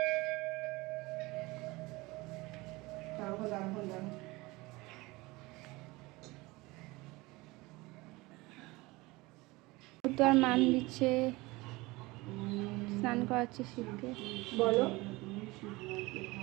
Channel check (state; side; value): quieter; left; 22.1 dB